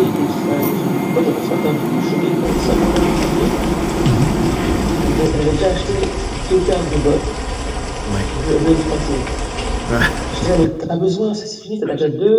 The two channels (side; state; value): both; identical; correlation 1.00